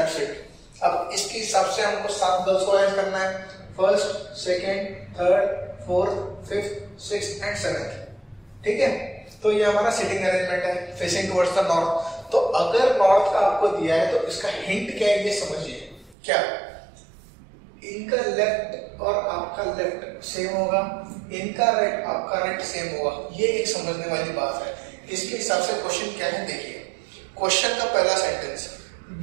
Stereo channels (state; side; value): drops out; left; at 16.2 s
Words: इट। अब इसके हिसाब से हमको 7 गर्ल्स को अरेंज करना है, first, second, third, fourth, fifth, sixth and seventh. ठीक है, तो ये हमारा सिटिंग अरेंजमेंट है फेसिंग टुवर्ड्स द नॉर्थ। तो अगर नॉर्थ का आपको दिया है तो इसका हिंट क्या है ये समझिए। क्या इनका लेफ्ट और आपका लेफ्ट सेम होगा, इनका राइट आपका राइट सेम होगा, ये एक समझने वाली बात है। इसके हिसाब से क्वेश्चन क्या है देखिए। क्वेश्चन का पहला sentence,